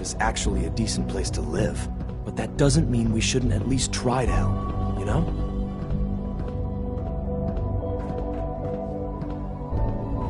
actually a decent place to live. But that doesn't mean we shouldn't at least try to help, you know?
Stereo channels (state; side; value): identical; both; correlation 1.00